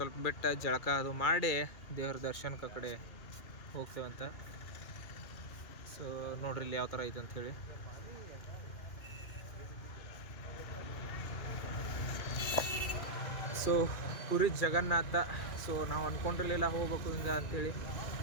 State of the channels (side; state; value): right; late; 2.5 ms